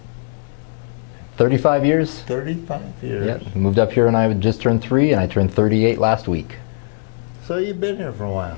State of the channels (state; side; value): silent; right; digital silence